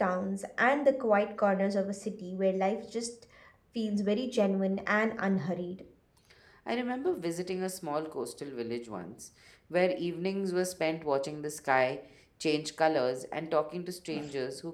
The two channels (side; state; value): both; identical; correlation 1.00